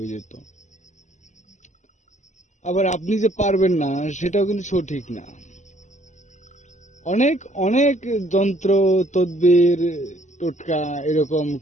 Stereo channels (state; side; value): late; right; 0.34 ms